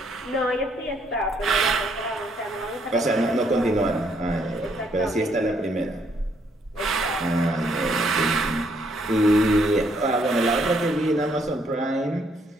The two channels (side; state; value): both; normal; correlation 0.70